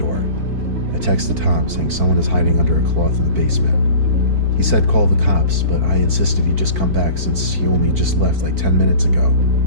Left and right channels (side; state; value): left; late; 4.5 ms